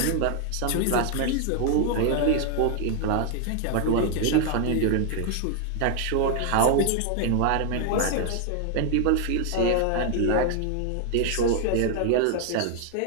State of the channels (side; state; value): both; different; correlation 0.00